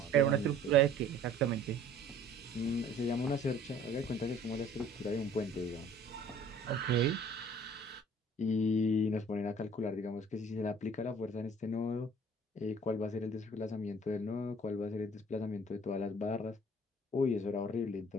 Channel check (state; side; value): normal; both; correlation 0.52